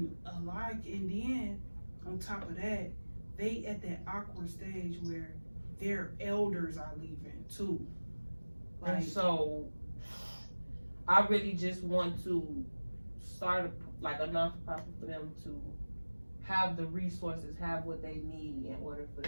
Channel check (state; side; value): inverted; both; correlation -1.00